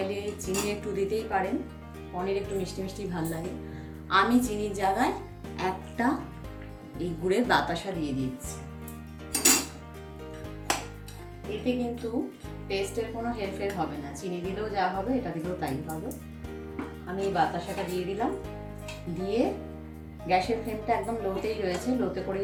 চিনি একটু দিতেই পারেন, পনির একটু মিষ্টি মিষ্টি ভালো লাগে। আমি চিনির জায়গায় একটা এই গুড়ের বাতাসা দিয়ে দিচ্ছি। এতে কিন্তু টেস্টের কোনো হেরফের হবে না, চিনি দিলেও যা হবে এটা দিলেও তাই হবে। আমি এই বাতাসাটা দিয়ে দিলাম, দিয়ে গ্যাসের ফ্লেমটা একদম লোতেই রয়েছে, লোতে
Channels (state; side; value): identical; both; correlation 1.00